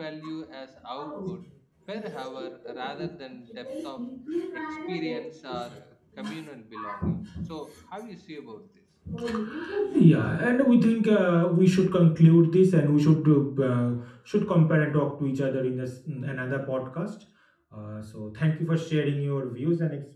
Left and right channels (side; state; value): both; identical; correlation 1.00